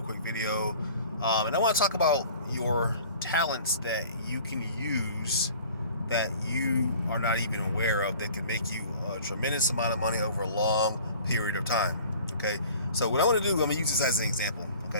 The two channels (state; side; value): inverted; both; correlation -0.47